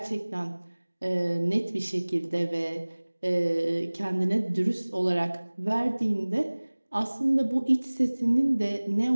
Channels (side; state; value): both; inverted; correlation -1.00